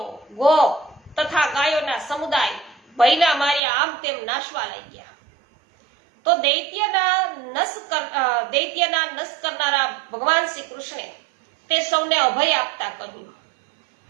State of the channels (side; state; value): left; drops out; at 3.6 s